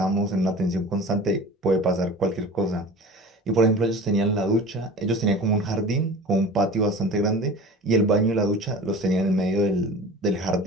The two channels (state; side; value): normal; both; correlation 0.38